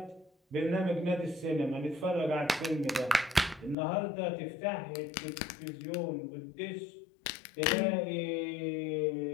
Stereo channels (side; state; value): right; drops out; at 3.8 s